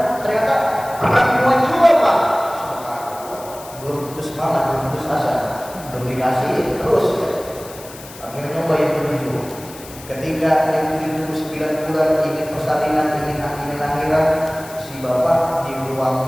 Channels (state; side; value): noise; left; hiss, 17 dB below the sound